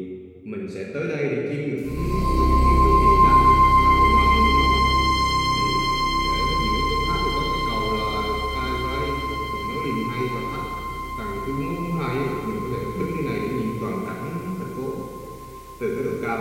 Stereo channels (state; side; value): identical; both; correlation 1.00